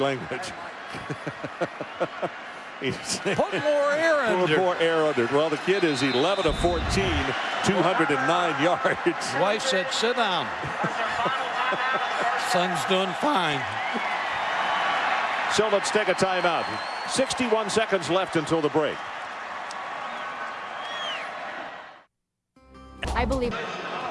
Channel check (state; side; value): identical; both; correlation 1.00